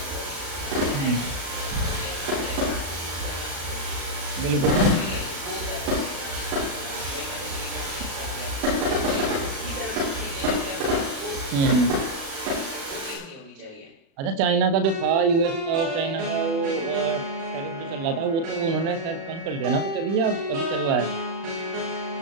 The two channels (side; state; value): left; late; 36 ms